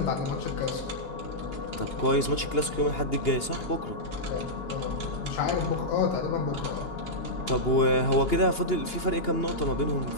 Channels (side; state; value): right; late; 2.9 ms